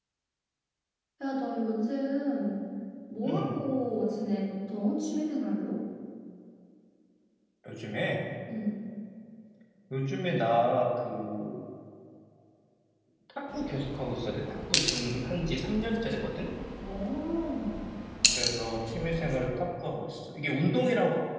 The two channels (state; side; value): identical; both; correlation 1.00